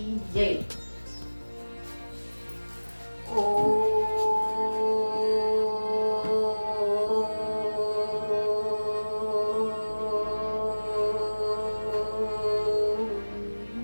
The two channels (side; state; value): both; inverted; correlation -1.00